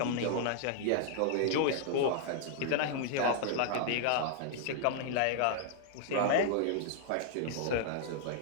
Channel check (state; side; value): different; both; correlation -0.01